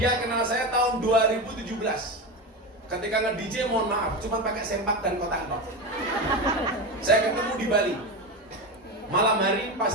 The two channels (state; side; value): normal; both; correlation 0.20